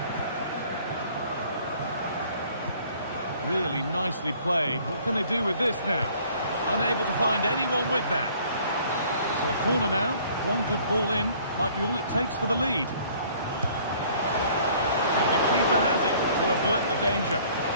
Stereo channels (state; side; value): inverted; both; correlation -0.56